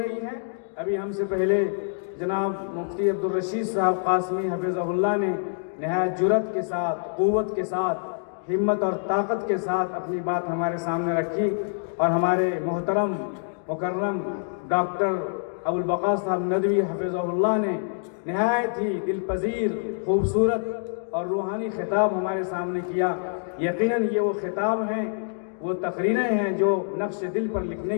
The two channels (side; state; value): right; silent; digital silence